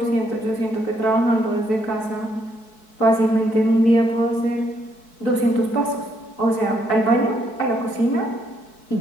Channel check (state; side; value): late; right; 4.6 ms